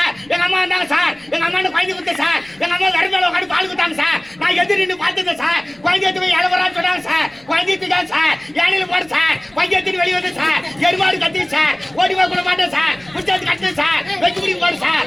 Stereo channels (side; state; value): left; noise; rumble, 30 dB below the sound